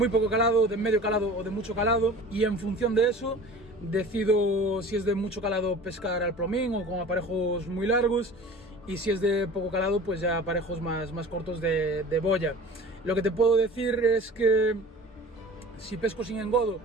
poco calado, de medio calado o de mucho calado. Y en función de eso, decido si es de mucho calado pescar al plomín o con aparejos muy largos. Y si es de poco calado, pues ya aparejos más cortos de boya. Lo que te puedo decir es que si pesco sin engodo,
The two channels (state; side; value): normal; both; correlation 0.40